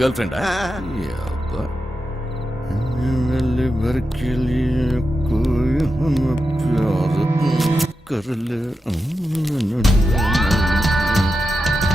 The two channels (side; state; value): both; normal; correlation 0.89